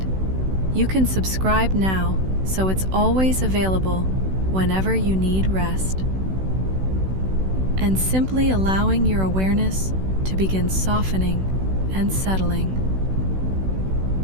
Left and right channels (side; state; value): left; late; 16 ms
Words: you can subscribe now so it's always available whenever you need rest. And simply allowing your awareness to begin softening and settling.